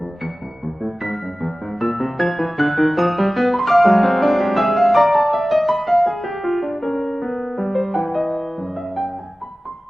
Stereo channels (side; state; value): both; normal; correlation 0.97